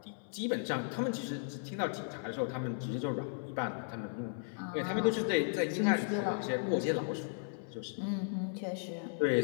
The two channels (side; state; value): right; silent; 54 dB below the other